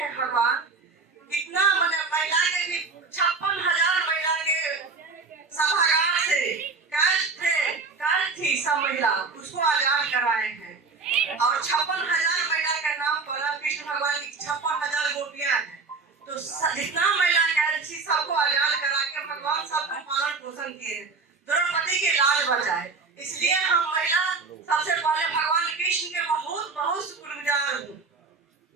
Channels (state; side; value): quieter; left; 4.4 dB